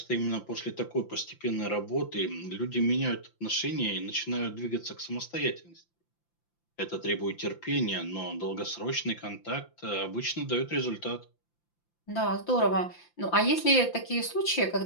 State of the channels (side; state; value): right; late; 5.8 ms